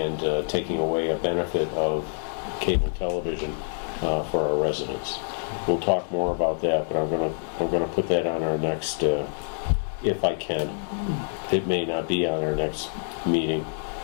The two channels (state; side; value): silent; right; digital silence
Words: taking away a benefit of cable television for our residents. We'll talk more about that, but I'm gonna put that on our next, if I can. It may not be on our next meeting.